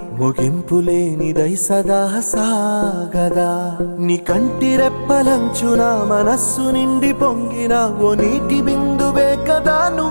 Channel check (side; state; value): both; inverted; correlation -1.00